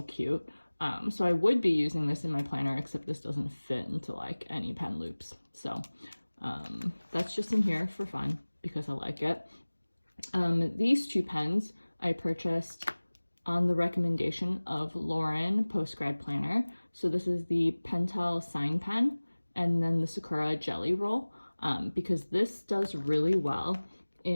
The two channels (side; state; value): both; inverted; correlation -1.00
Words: cute. So I would be using this in my planner, except this doesn't fit into like any pen loops. So that's just in here for fun because I like it. These two pens I purchased on the recommendation of Lauren Postgrad Planner. So this is the Pentel Sign Pen and then the Sakura Jelly Roll, because this does really well